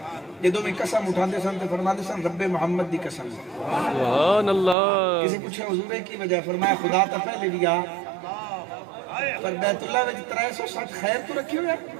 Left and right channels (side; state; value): left; drops out; at 4.8 s